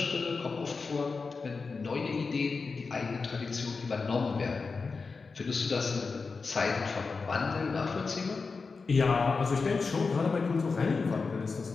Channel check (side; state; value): right; quieter; 4.5 dB